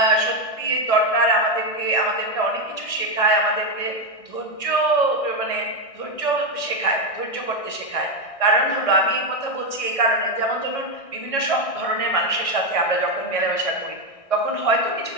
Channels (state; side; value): late; right; 1.6 ms